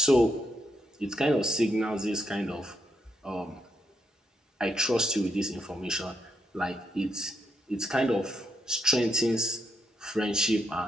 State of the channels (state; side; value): normal; both; correlation 0.79